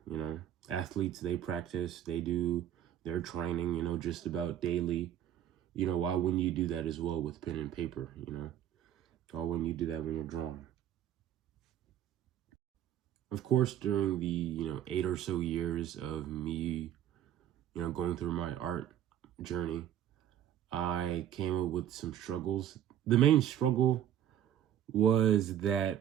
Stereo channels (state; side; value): quieter; left; 10.8 dB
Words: Athletes, they practice, they do their training, just about daily. Why wouldn't you do that as well with pen and paper, Why wouldn't you do that when you're drawing? Of course, during the, 8 or so years of me, going through my art journey, I came up with some struggles. The main struggle was